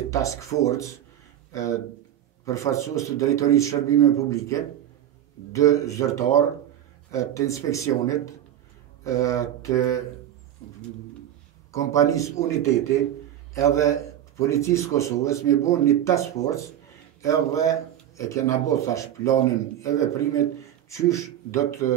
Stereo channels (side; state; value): left; quieter; 11.2 dB